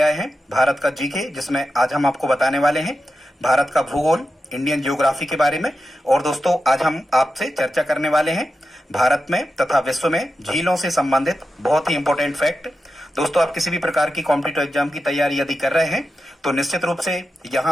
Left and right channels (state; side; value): normal; both; correlation 0.90